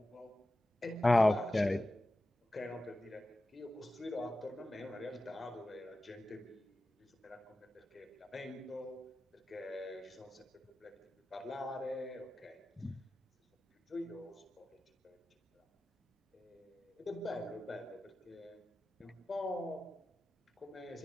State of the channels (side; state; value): both; normal; correlation 0.94